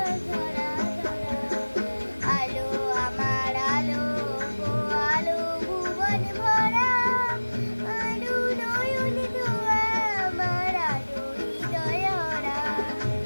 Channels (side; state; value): both; inverted; correlation -1.00